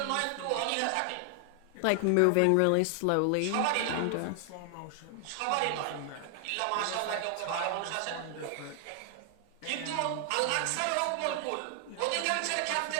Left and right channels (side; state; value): both; different; correlation 0.00